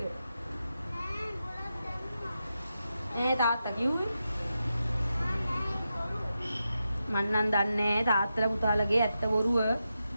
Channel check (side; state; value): both; inverted; correlation -0.89